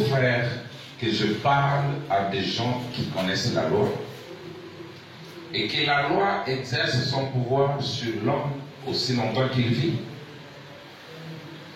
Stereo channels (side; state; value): both; identical; correlation 1.00